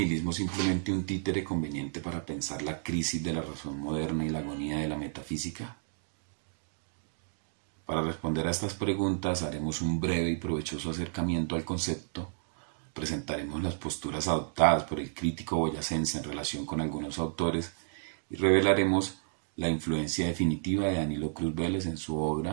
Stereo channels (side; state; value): left; silent; digital silence